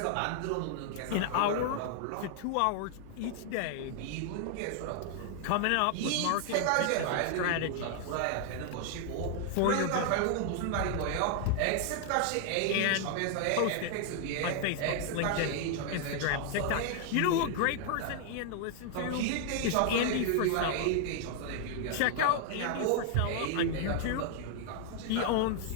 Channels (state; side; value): different; both; correlation 0.00